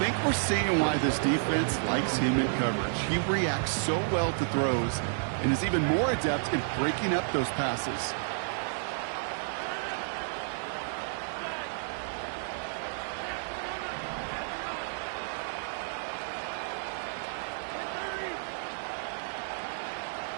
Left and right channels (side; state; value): left; silent; 57 dB below the other